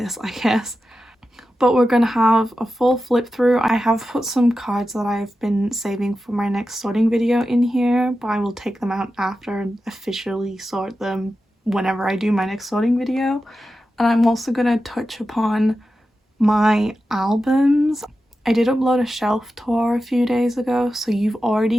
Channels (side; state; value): both; normal; correlation 0.92